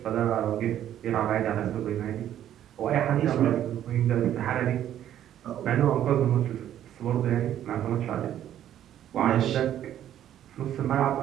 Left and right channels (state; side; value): quieter; left; 11.2 dB